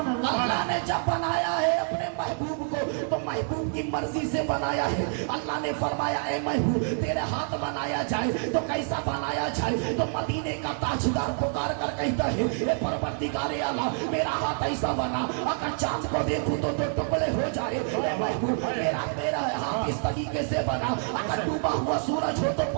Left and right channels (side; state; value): left; silent; 56 dB below the other